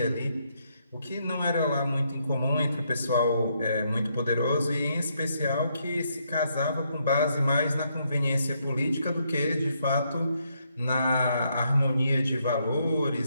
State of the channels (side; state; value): both; inverted; correlation -0.75